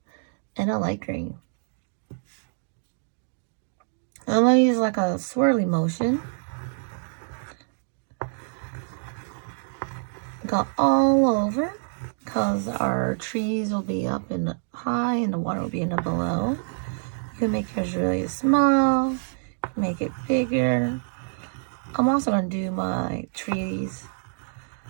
and a light green. I'm going to use like a swirly motion. Go all over because our trees will be up in the high and the water will be in the below. You can make yours really small, make it bigger. I'm also going to do my trees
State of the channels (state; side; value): silent; left; digital silence